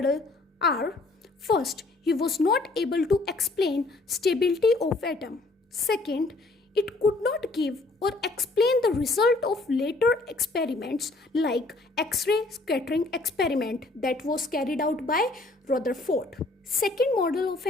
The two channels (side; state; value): right; quieter; 3.1 dB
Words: are: first, he was not able to explain stability of atom. Second, it could not give or explain the result of later experiments like X-ray scattering experiment that was carried out by Rutherford. Second model of